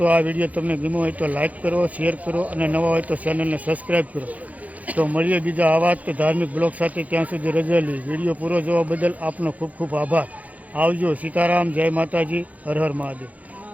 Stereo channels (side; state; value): left; late; 0.074 ms